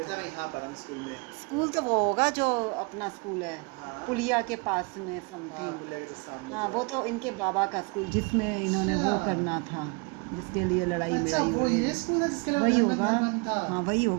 मैं यहाँ पढ़ा हूँ स्कूल में। स्कूल तो वो होगा जो अपना स्कूल है, हाँ। पुलिया के पास में हाँ, समथिंग। पुलिया के just सामने हाँ जो वो है। तो इनके बाबा का स्कूल, जिसमें इन्होंने वो अच्छा। करना था, जिसके लिए लड़ाई अच्छा मिड़ाई वो हो रही ये थी। स्कूल है जिसके लिए वही बंधन होगा। बंधन था। हाँ वही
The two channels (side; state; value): left; quieter; 32.2 dB